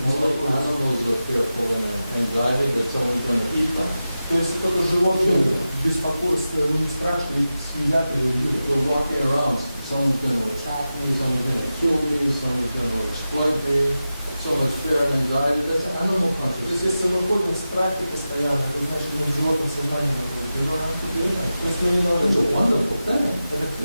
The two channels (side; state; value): both; inverted; correlation -0.93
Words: беспокойства. animals are fearful and in anxiety that someone's going to eat them. То есть только животные беспокойство, у них страшно, их съедят или убьют. We're walking around, someone's going to attack me, someone's going to kill me, someone's going to exploit me. So much fear and anxiety, that's animal То есть consciousness. если мы ходим в страхе постоянно, это значит, мы в животном сознании находимся. You don't have to do that. То есть мы не надо It's a делать. wonderful thing.